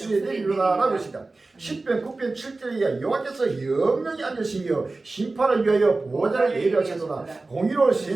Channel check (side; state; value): left; quieter; 3.4 dB